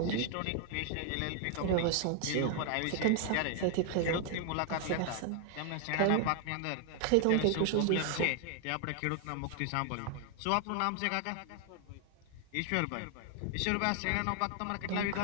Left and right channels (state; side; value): different; both; correlation 0.00